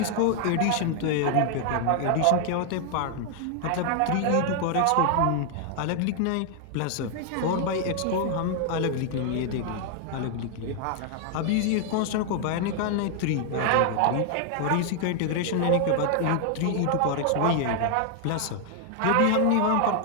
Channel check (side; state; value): both; different; correlation 0.00